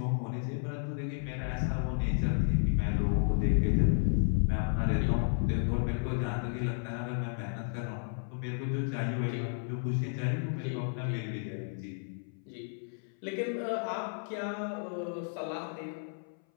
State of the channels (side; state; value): right; silent; 56 dB below the other